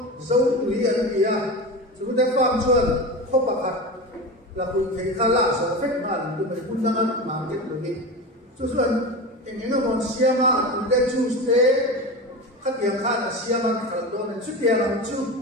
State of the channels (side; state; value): both; normal; correlation 0.26